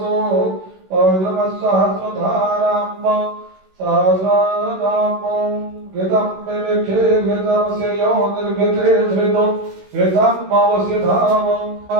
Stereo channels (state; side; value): late; left; 16 ms